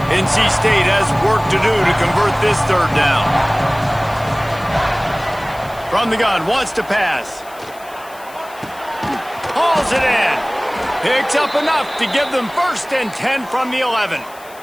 NC State has work to do to convert this 3rd down. From the gun, wants to pass. Hauls it in. Picks up enough to give them 1st and 10 from the 11.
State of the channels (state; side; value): noise; left; hiss, 22 dB below the sound